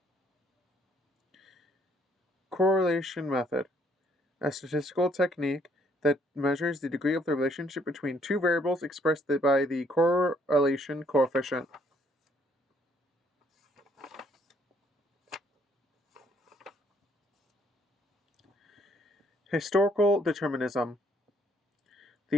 Correlation method. A statistical technique that measures the degree of the relationship between two variables expressed by the correlation coefficient. Historical determinism.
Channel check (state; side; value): normal; both; correlation 0.66